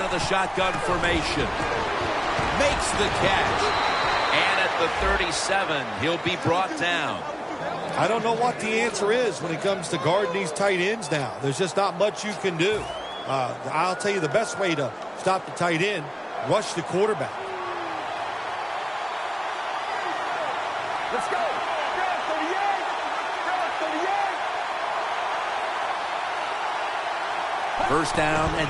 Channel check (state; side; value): identical; both; correlation 1.00